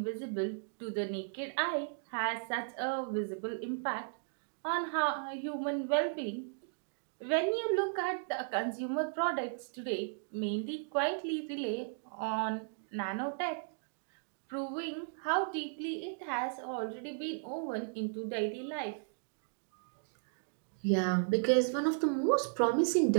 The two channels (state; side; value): silent; left; digital silence